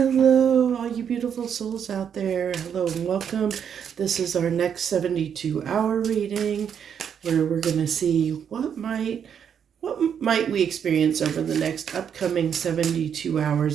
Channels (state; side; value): quieter; left; 8.0 dB